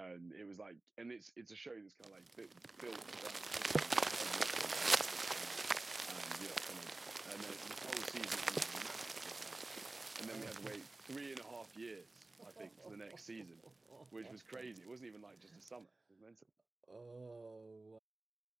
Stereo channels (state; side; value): quieter; left; 3.1 dB